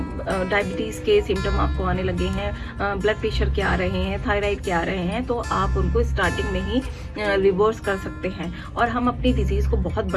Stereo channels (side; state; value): both; identical; correlation 1.00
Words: डायबिटीज़ के सिम्टम आपको आने लगे हैं, ब्लड प्रेशर के आ रहे हैं, थायराइड के आ रहे हैं, तो आप उनको स्टार्टिंग में ही रिवर्स कर सकते हैं। और हम अपनी डिजीज़ को बहुत